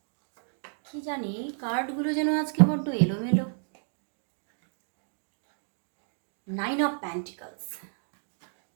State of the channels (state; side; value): silent; left; 57 dB below the other